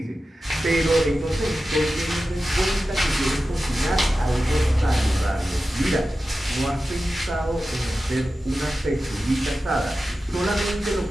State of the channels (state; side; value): normal; both; correlation 0.93